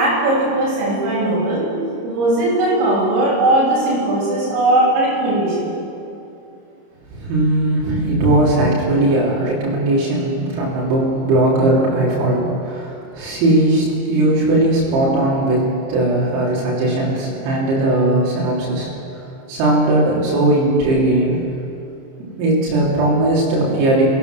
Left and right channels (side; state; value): left; late; 30 ms